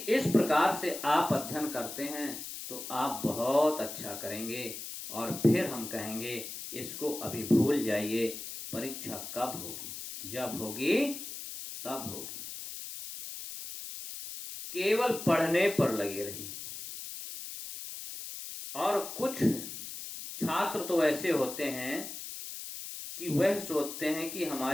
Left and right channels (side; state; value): left; noise; hiss, 9 dB below the sound